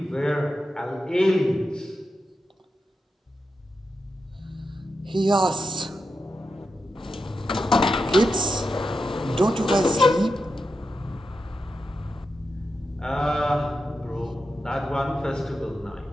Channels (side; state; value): both; normal; correlation 0.88